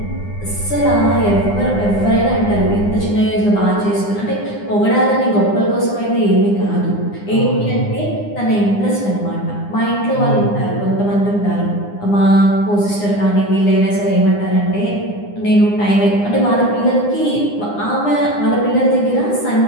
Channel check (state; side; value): late; right; 9.8 ms